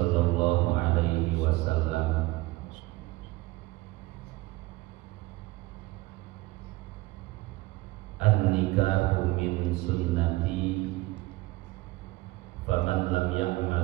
الله عليه وسلم النكاح من سنتي فمن لم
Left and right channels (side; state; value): left; quieter; 20.5 dB